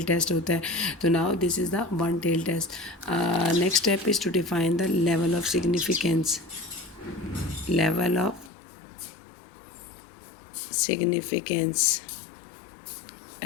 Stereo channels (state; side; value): drops out; right; at 8.5 s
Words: टेस्ट होता है. तो now this is the one tail test. Next step is to define the level of significance.